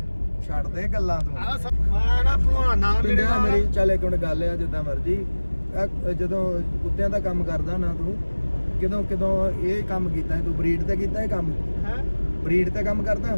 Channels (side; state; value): both; inverted; correlation -1.00